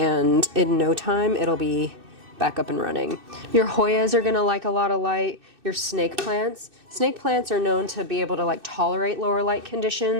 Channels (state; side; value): late; left; 2.6 ms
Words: in no time it'll be back up and running. Your Hoyas are gonna like a lot of light. Your snake plants are known to be able to like tolerate lower light